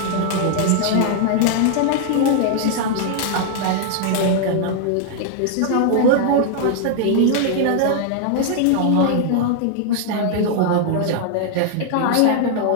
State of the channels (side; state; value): both; different; correlation 0.00